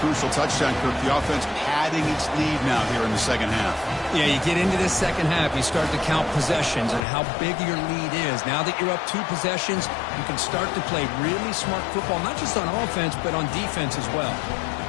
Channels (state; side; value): drops out; right; at 7.0 s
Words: touchdown, Kirk. The offense padding its lead now here in the second half. Yeah, you get into this second half, you start to count possessions and how big your lead is. Now that you're up 2 possessions, you can start to play really smart football, not just on offense, but on defense as well.